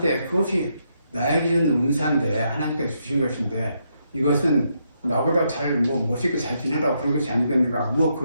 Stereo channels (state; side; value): inverted; both; correlation -0.78